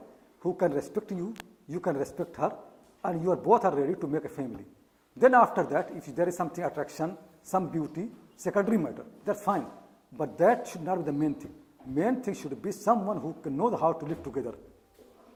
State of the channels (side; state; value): both; identical; correlation 1.00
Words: who can respect you, you can respect her, and you are both are ready to make a family. Then after that, if there is something attraction, some beauty, secondary matter, that's fine. But that should not be the main thing. Main thing should be someone who can know how to live together.